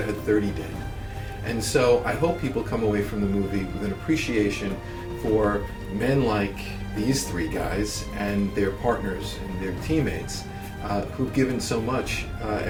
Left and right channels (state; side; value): identical; both; correlation 1.00